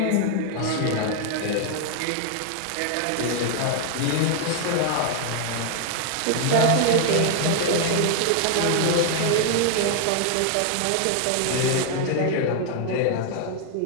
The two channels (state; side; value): different; both; correlation 0.00